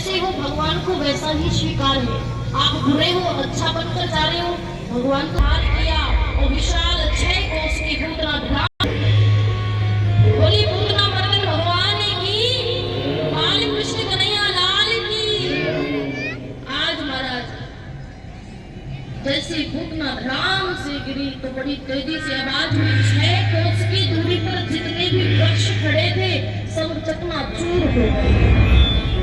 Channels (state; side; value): identical; both; correlation 1.00